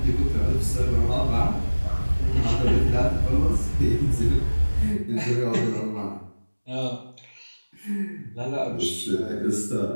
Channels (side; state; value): both; inverted; correlation -1.00